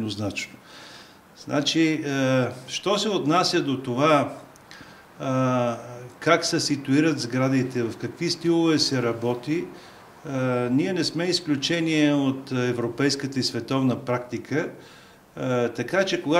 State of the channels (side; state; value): both; identical; correlation 1.00